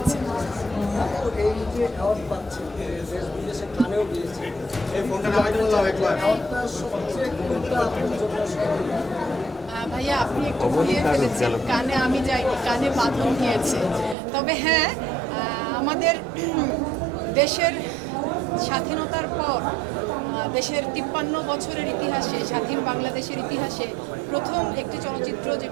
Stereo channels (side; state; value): left; drops out; at 14.2 s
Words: ভাইয়া আপনি একটু ভুলিয়ে ফেলেছেন, কানে আমি যাইনি, কানে বাঁধন গিয়েছে। তবে হ্যাঁ, আমাদের দেশের স্বাধীনতার পর দেশের 53 বছরের ইতিহাসে, স্বাধীন বাংলাদেশের ইতিহাসে প্রথম একটি চলচ্চিত্র